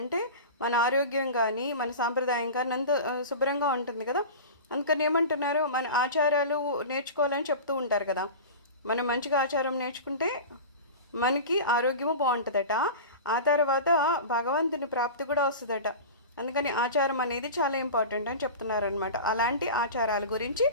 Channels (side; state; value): both; inverted; correlation -0.31